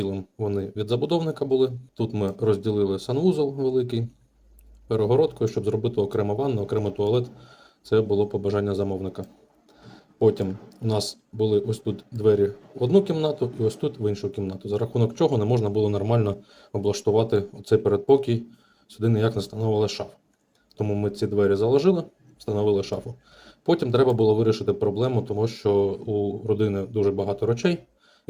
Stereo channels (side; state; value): both; identical; correlation 1.00